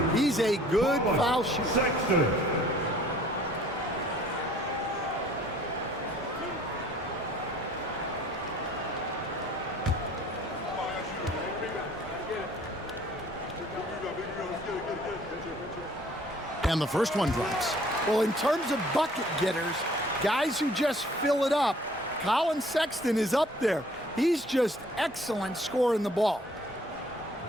He's a good foul shooter. Sexton. And the first one drops. Well, in terms of bucket getters, guys who just fill it up, Colin Sexton is up there. He's just excellent scoring the ball.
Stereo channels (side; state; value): both; normal; correlation 0.56